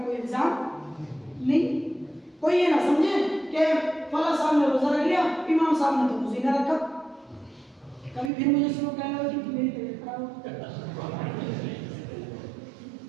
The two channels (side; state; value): left; drops out; at 8.3 s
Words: कोई इल्जाम नहीं। कोई ये ना समझे कि फला साहब ने रोजा रख लिया, इमाम साहब ने तो रोजा ना रखा। कभी फिर मुझे शुरू कहना होगी कि मेरी तबीयत खराब हो,